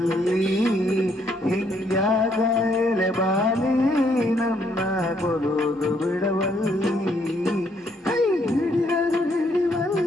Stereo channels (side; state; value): both; normal; correlation 0.70